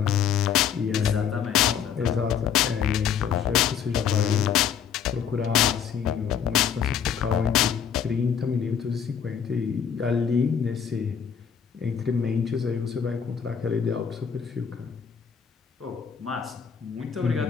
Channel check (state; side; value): quieter; right; 7.8 dB